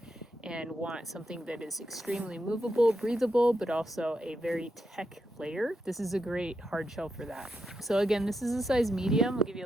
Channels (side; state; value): both; normal; correlation 0.84